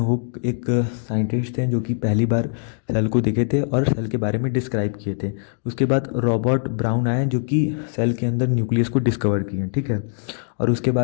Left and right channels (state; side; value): silent; right; digital silence